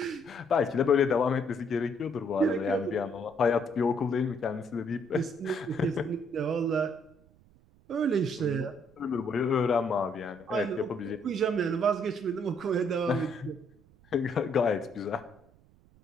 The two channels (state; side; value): noise; right; rumble, 29 dB below the sound